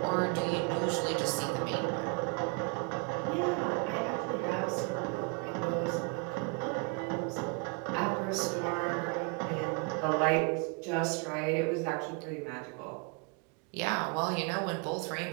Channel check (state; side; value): quieter; left; 34.9 dB